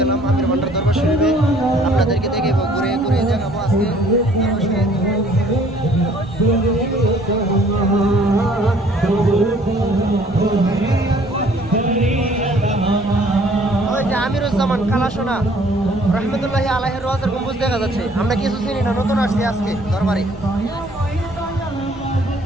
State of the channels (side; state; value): right; noise; rumble, 23 dB below the sound